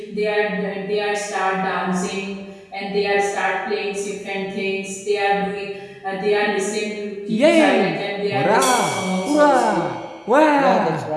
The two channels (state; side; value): identical; both; correlation 1.00